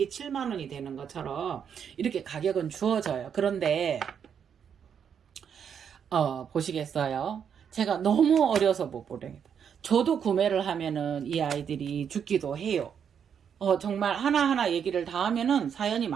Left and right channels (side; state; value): left; quieter; 7.7 dB